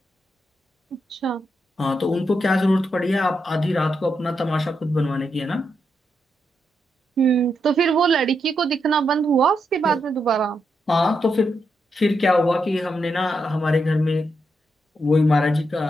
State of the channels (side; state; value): both; normal; correlation 0.82